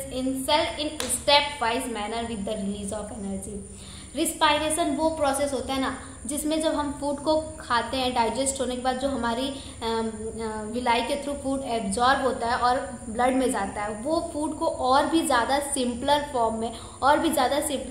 in cell in step-wise manner with the release of energy. Respiration वो process होता है ना, जिसमें जब हम food को खाते हैं, डाइजेस्ट होने के बाद जो हमारी विलाई के थ्रू फूड एब्जॉर्ब होता है और ब्लड में जाता है, वो फूड को और भी ज़्यादा सिंपलर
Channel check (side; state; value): both; identical; correlation 1.00